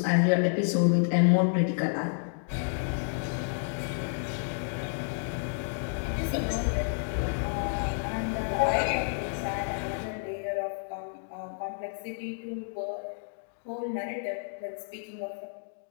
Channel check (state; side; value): silent; right; digital silence